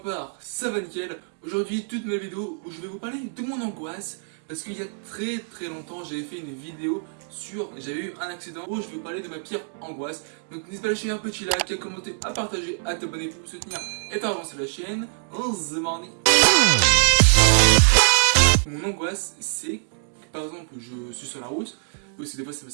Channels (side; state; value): left; silent; digital silence